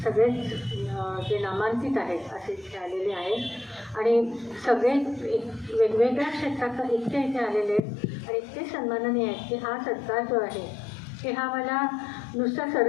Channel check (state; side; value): drops out; right; at 7.8 s